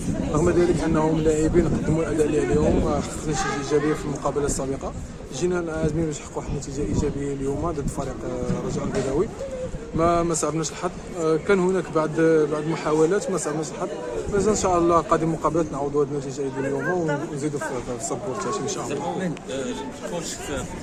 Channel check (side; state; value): both; identical; correlation 1.00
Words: رغم ذلك انهم لاعبين قدموا الاداء اللي عليهم، ما حققناش ايجابيه في المقابله السابقه. جينا عازمين باش نحققوا واحد النتيجه ايجابيه اليوم ضد فريق الرجاء البيضاوي. ما صعبناش الحظ، كان هناك بعض المحاولات ما صعبناش الحظ. مازال ان شاء الله قادم مقابلات نعوضوا هذه النتيجه ديال اليوم ونزيدوا في الصبور تاعي ان شاء الله. كوتش في